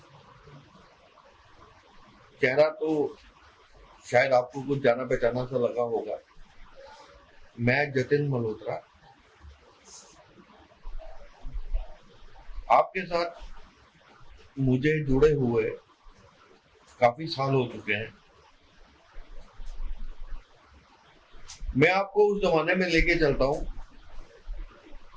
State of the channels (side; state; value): both; identical; correlation 1.00